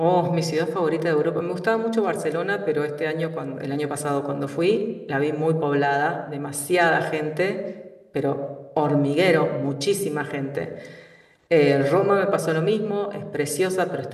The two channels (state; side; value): identical; both; correlation 1.00